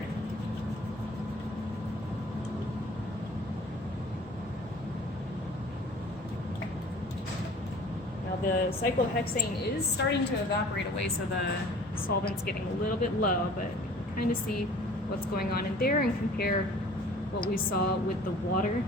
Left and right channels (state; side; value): normal; both; correlation 0.48